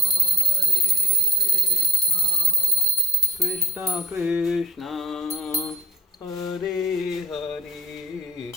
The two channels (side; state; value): both; normal; correlation 0.48